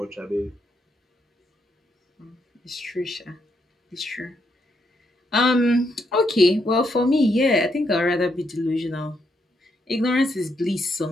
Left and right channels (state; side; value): normal; both; correlation 0.77